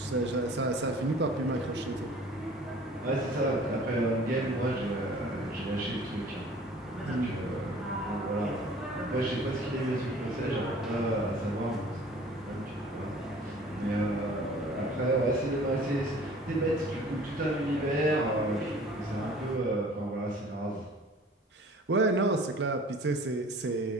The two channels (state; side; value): normal; both; correlation 0.49